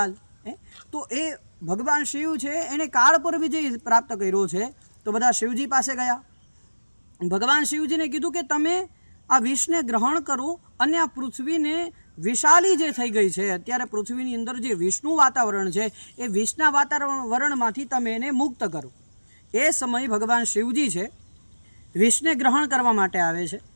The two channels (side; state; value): both; inverted; correlation -1.00